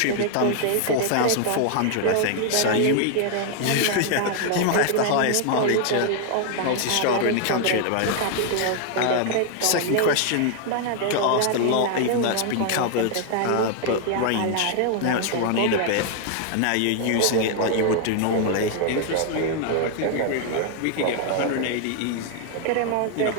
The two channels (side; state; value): both; different; correlation 0.00